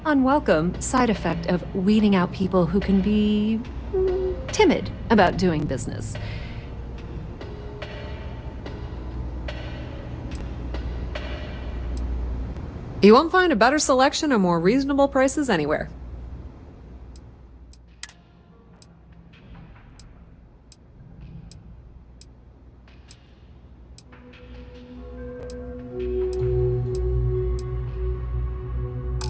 unwelcome, side effect of weeding out people who can be timid about doing business. You won't find a better selection or more reasonable prices anywhere.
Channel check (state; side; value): identical; both; correlation 1.00